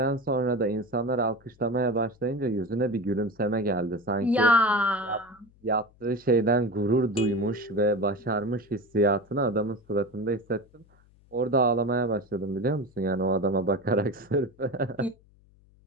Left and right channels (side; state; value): left; noise; hum, 29 dB below the sound